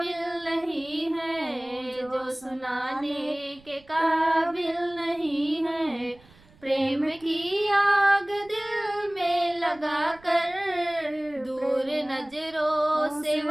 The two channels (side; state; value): right; noise; rumble, 27 dB below the sound